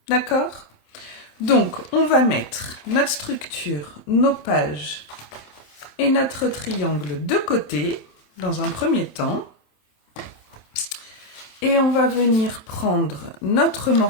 D'accord? Donc, on va mettre notre structure, nos pages et notre triangle de côté, dans un premier temps. Et on va venir prendre notre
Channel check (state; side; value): late; right; 27 ms